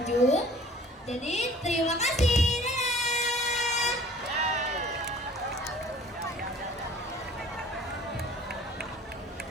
Jadi terima kasih.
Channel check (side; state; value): both; normal; correlation 0.49